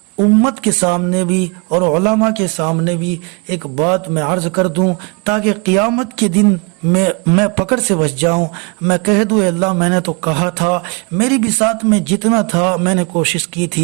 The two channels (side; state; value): left; quieter; 31.8 dB